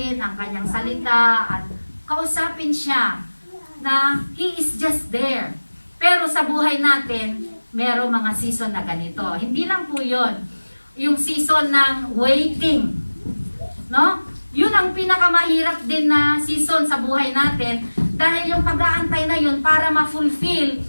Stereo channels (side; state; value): both; inverted; correlation -1.00